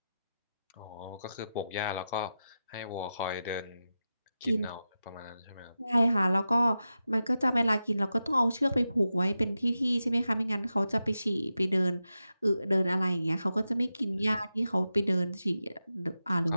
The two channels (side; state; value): both; inverted; correlation -0.91